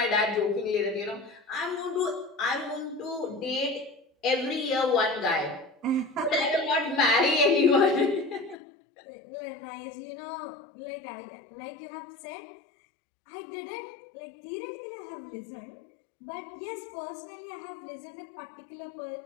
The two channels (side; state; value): right; drops out; at 8.6 s